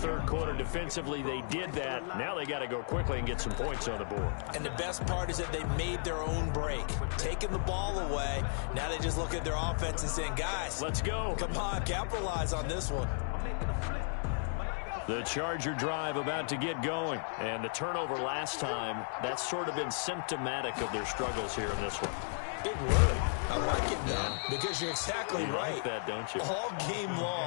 quarter. Defensively, they did that. Now they got to go quickly and get some points on the board. And the best part is that they made their own break, taking the ball away. Now they just look at their offense and saying, guys, let's go. Come on, capitalize on this one. The Charger drive about to get going. And the turnover last time, that's sort of been symptomatic of their struggles here in this one. Big word. I like it now because you're exactly right. Like that, don't you? All game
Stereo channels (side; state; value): right; silent; 55 dB below the other